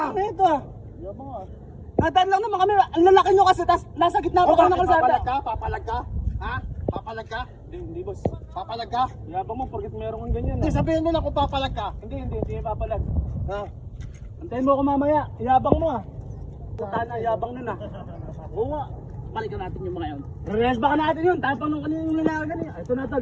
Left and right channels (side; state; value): both; identical; correlation 1.00